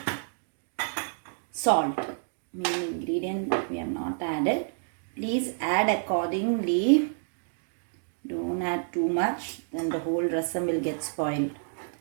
salt. Main ingredient we have not added. Please add accordingly. Don't add too much, then the whole rasam will get spoiled.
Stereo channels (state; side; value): silent; left; digital silence